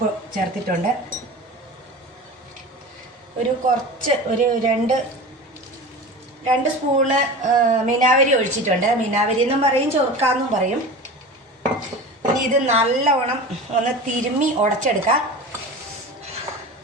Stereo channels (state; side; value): normal; both; correlation 0.32